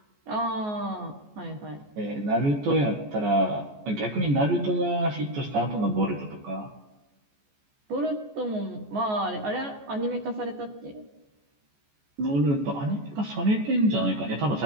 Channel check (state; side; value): late; left; 14 ms